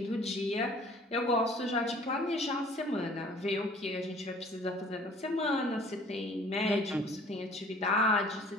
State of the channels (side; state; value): both; normal; correlation 0.52